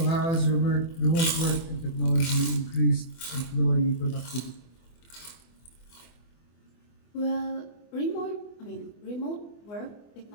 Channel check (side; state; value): right; late; 24 ms